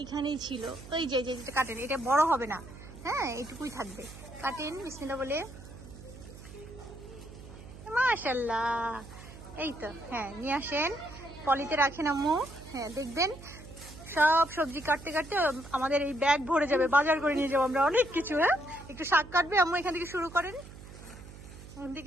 ছিল। ওই যে যেটা কাটেন, এটা বড় হবে না, হ্যাঁ এইটুকুই থাকবে। কাটেন বিসমিল্লাহ বলে। মাশাআল্লাহ, এই তো। হ্যাঁ নিয়ে আসেন, পলিতে রাখেন আম্মু। হ্যাঁ দেখবেন সব সবজি কাটতে কাটতে আমাদের এই ব্যাগ ভরে যাবে, বাজার করে নিয়ে যাবো আমরা অনেক কিছু। হ্যাঁ একটু শাক কাটবে আম্মু, এখান থেকে শুরু করেন। এখান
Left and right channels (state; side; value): noise; right; hum, 16 dB below the sound